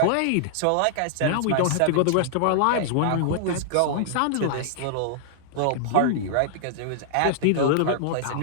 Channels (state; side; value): different; both; correlation -0.01